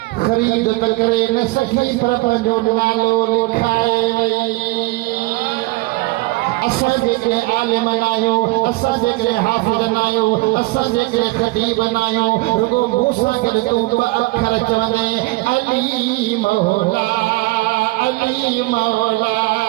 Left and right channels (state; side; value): quieter; left; 21.5 dB